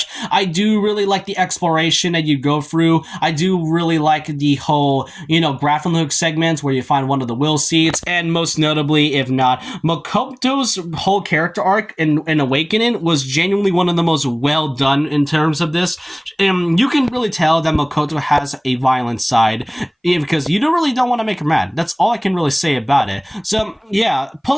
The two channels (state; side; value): identical; both; correlation 1.00